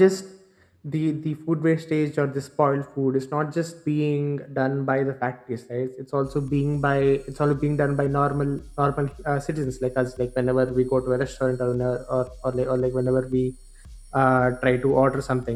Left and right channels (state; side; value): identical; both; correlation 1.00